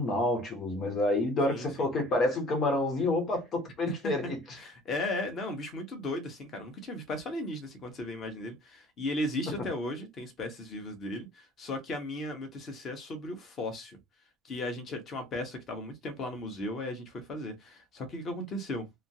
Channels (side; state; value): both; normal; correlation 0.50